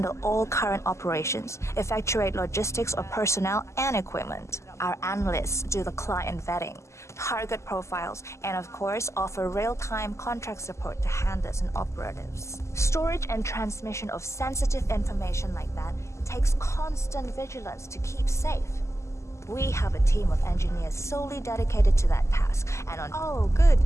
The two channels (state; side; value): late; right; 0.13 ms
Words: all current operations, effectuate logistics of personnel and equipment. Our analysts do the client vetting, target profiles, and of course offer real-time contract support to handlers and operatives. Storage and transmission of sensitive information like that takes constant vigilance to keep safe. We have a team of engineers solely dedicated to that task, and on— Oh, good.